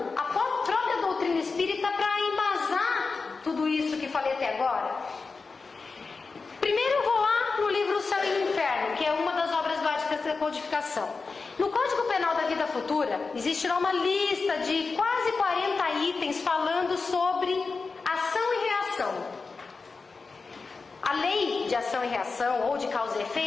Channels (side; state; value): right; quieter; 4.3 dB